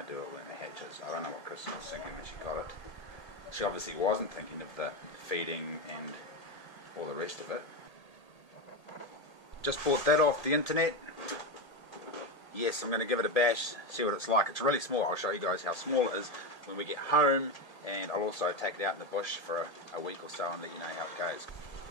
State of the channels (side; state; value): right; late; 1.8 ms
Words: to do when it hatches. I don't know what Kristen was thinking when she got it. She obviously wasn't thinking of the feeding and all the rest of it. Just bought that off the internet. Yes, I'm going to give it a bash, see what it's like. It's really small. I'll show you guys how small it is when we get home, and I'll also take it out in the bush for a week or so and let you know how it goes.